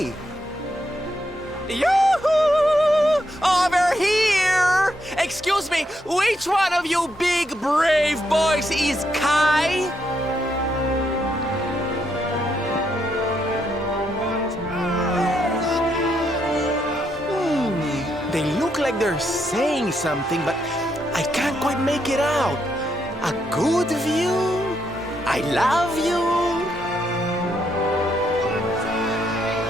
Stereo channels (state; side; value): normal; both; correlation 0.78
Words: Yoo-hoo! Over here! Excuse me, which one of you big brave boys is Kai? They look like they're saying something, but I can't quite make it out. A good view? I love you?